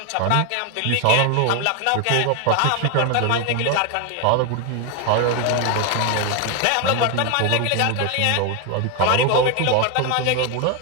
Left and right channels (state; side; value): different; both; correlation 0.01